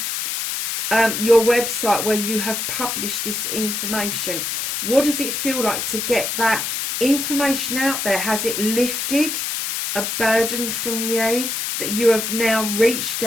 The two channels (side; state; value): left; noise; hiss, 2 dB below the sound